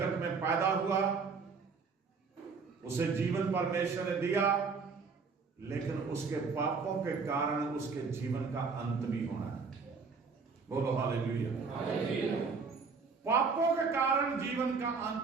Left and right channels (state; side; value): quieter; left; 5.0 dB